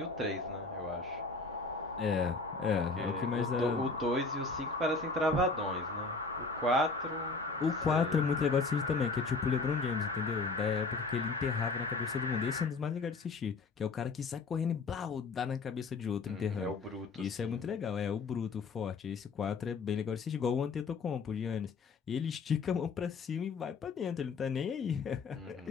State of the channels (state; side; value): quieter; right; 4.1 dB